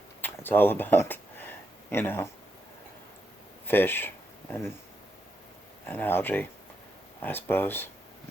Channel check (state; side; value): normal; both; correlation 0.83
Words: It's all about, fish and algae, I suppose.